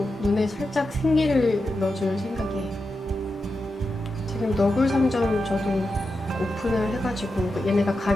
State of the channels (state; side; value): normal; both; correlation 0.89